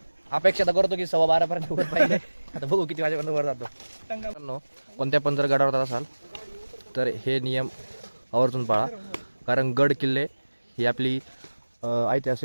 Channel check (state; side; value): inverted; both; correlation -1.00